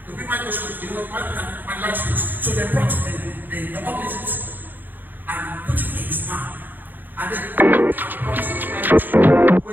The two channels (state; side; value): late; left; 0.088 ms